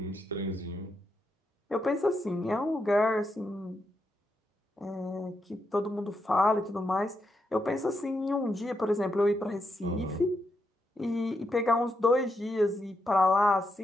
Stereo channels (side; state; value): both; normal; correlation 0.82